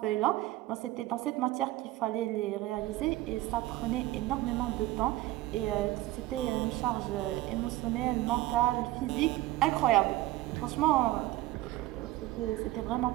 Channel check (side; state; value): left; quieter; 17.0 dB